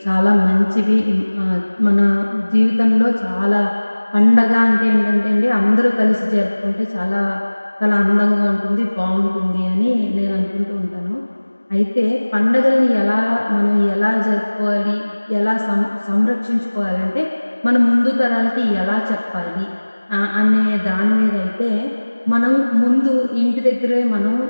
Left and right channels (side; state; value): both; inverted; correlation -1.00